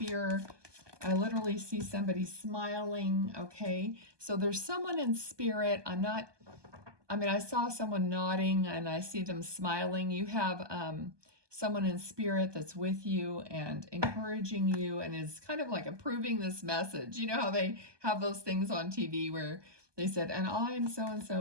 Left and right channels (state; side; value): late; left; 1.2 ms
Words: I literally see somebody smiling. Okay, so there's someone in spirit. I saw someone nodding and I see them smiling. You have someone in spirit that's with you and encouraging you and is kind of like approving this message. You know how they have those things on TV where they said, and I'm